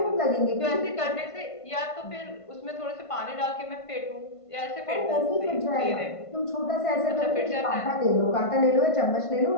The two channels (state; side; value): late; right; 1.5 ms